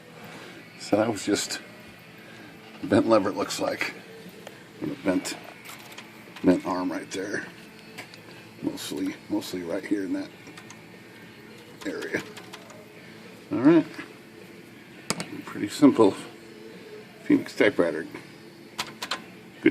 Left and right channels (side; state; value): both; identical; correlation 1.00